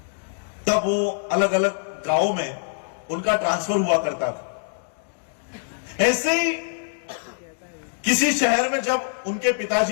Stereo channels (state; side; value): silent; right; digital silence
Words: तब वो अलग अलग गांवों में उनका ट्रांसफर हुआ करता था। ऐसे ही किसी शहर में जब उनके